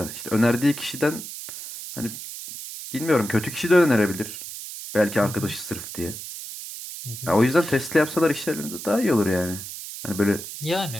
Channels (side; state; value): right; noise; hiss, 10 dB below the sound